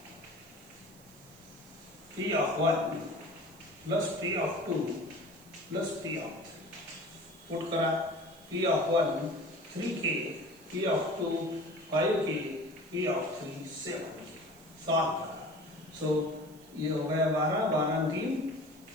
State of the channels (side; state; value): right; noise; hiss, 24 dB below the sound